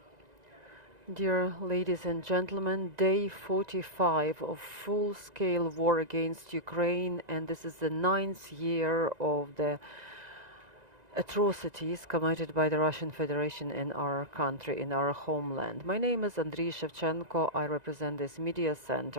Dear ladies and gentlemen, day 45 of full-scale war against Ukraine, and this is the 9th year of the atrocities committed by the Russian Federation in our country, in our homeland. My name is Andriy Shevchenko. I represent this media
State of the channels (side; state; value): left; late; 1.9 ms